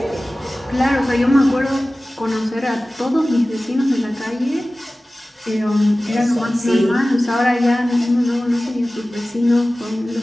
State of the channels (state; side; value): normal; both; correlation 0.97